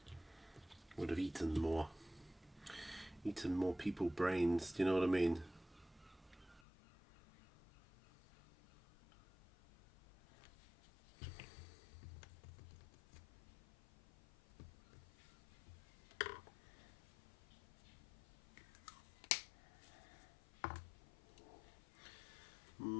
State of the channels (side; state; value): right; drops out; at 6.6 s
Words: would have eaten more people brains, do you know what I mean?